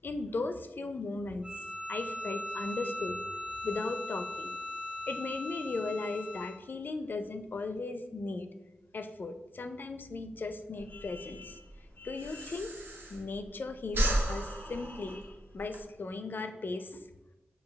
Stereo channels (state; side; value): normal; both; correlation 0.83